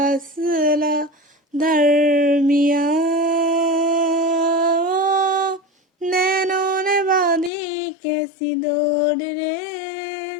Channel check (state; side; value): drops out; right; at 7.5 s